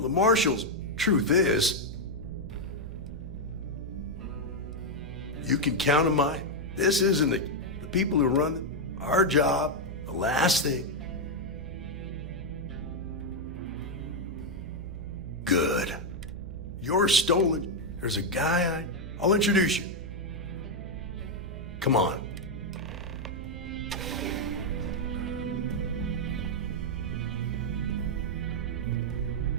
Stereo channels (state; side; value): noise; right; hum, 9 dB below the sound